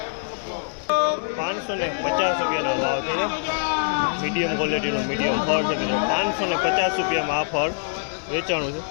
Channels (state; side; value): silent; right; 59 dB below the other